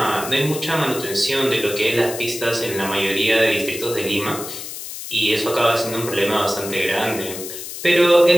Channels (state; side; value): noise; left; hiss, 9 dB below the sound